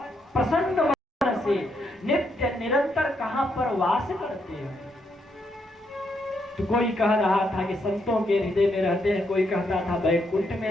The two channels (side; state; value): both; normal; correlation 0.77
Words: प्रसन्न मन से नित्य निरंतर कहां पर वास करते हैं। तो कोई कह रहा था कि संतों के हृदय में रहते हैं, कोई कहता था वैकुंठ में